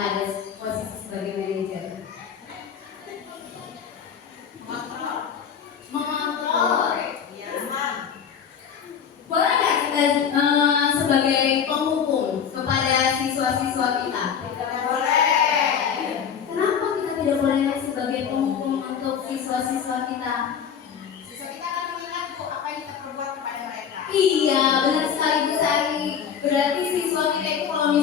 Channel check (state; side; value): quieter; right; 7.6 dB